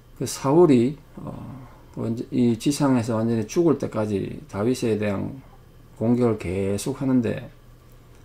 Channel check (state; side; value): identical; both; correlation 1.00